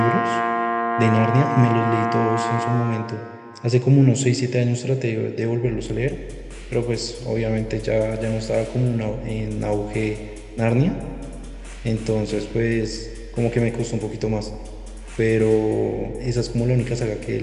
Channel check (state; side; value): identical; both; correlation 1.00